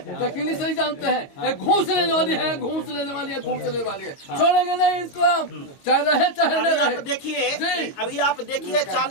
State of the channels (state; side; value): late; right; 22 ms